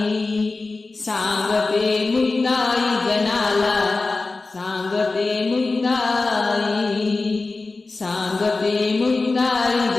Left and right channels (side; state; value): right; quieter; 3.6 dB